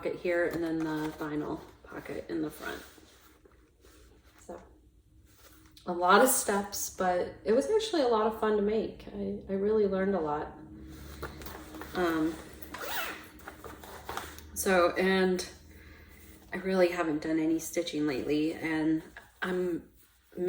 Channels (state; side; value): identical; both; correlation 1.00